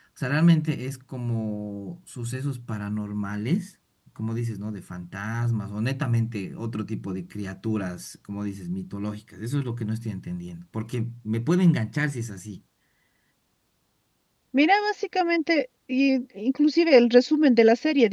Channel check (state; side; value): identical; both; correlation 1.00